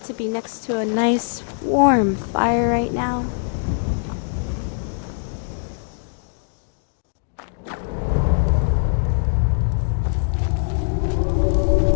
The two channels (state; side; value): silent; right; digital silence